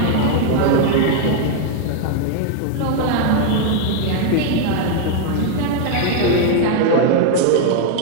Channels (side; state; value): both; different; correlation 0.00